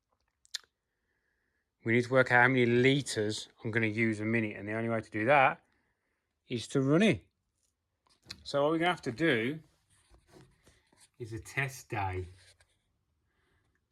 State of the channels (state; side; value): identical; both; correlation 1.00